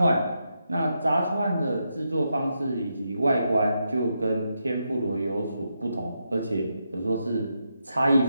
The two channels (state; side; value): inverted; both; correlation -0.84